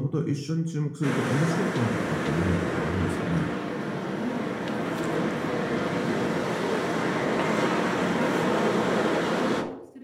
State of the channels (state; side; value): identical; both; correlation 1.00